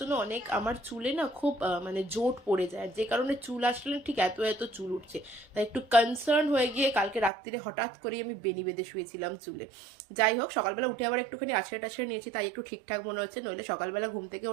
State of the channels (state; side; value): drops out; left; at 7.3 s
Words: অনেক আমার চুলে না খুব মানে জোট পড়ে যায়, যে কারণে চুল আসলে ঠিক এত এত চুল উঠছে। তাই একটু কনসার্ন হয়ে গিয়ে কালকে রাত্রিরে হঠাৎ করে আমি বেনি বেঁধে শুয়েছিলাম চুলে। যাই হোক, সকালবেলা উঠে আবার একটুখানি আছড়ে টাছড়ে নিয়েছি, তাই একটু ঠিকঠাক মনে হচ্ছে। নইলে সকালবেলা ঘুম থেকে